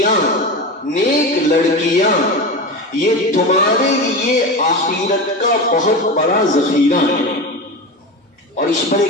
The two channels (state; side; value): normal; both; correlation 0.24